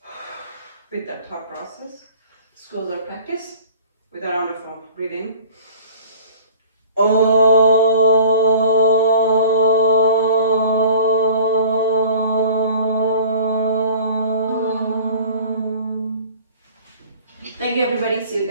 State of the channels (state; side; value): inverted; both; correlation -0.46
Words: With that thought process, let's close our practice with a round of breathing. Thank you everybody. See you